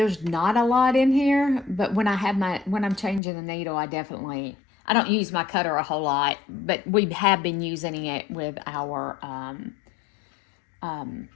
not a lot in here, but when I'm changing the needle, I don't use my cutter a whole lot, but we have been using it with our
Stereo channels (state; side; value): drops out; right; at 3.2 s